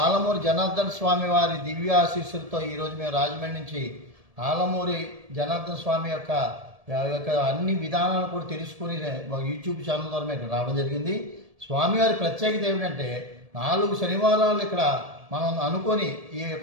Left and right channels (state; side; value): late; left; 1.7 ms